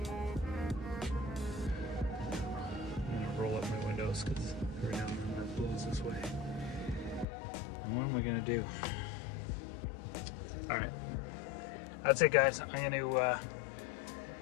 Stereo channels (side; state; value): right; drops out; at 7.2 s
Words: I'm gonna roll up my windows because right now it blows this way. And what am I gonna do? All right, that's it guys. I'm gonna